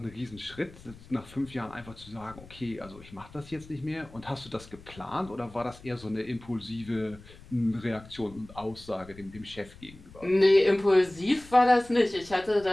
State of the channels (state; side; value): noise; left; rumble, 20 dB below the sound